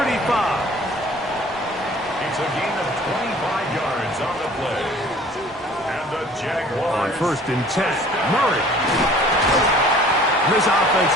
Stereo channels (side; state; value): both; normal; correlation 0.51